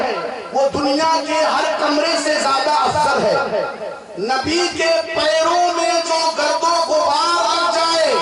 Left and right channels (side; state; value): both; identical; correlation 1.00